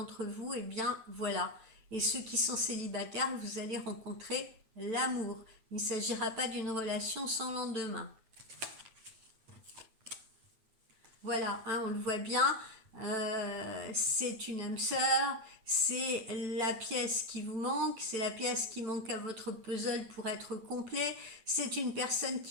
vous, eh bien, voilà. Et ceux qui sont célibataires, vous allez rencontrer l'amour. Il ne s'agira pas d'une relation sans lendemain. Voilà, hein, on le voit bien, c'est une âme sœur, c'est la pièce qui vous manque, c'est la pièce qui manque à votre puzzle pour être complet, c'est une personne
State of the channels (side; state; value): left; late; 9.0 ms